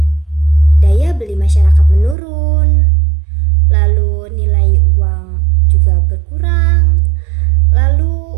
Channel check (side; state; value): left; drops out; at 2.1 s